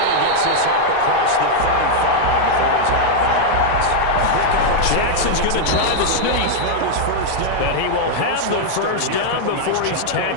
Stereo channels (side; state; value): both; different; correlation -0.01